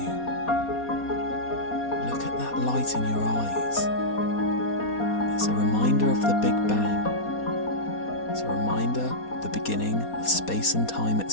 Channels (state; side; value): late; right; 4.2 ms